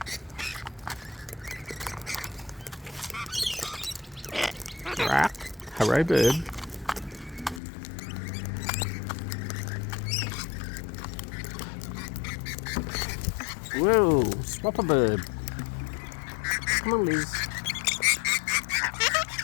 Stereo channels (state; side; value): drops out; right; at 7.6 s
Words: Hooray Bird. Whoa, swap a bird. Come on, Liz.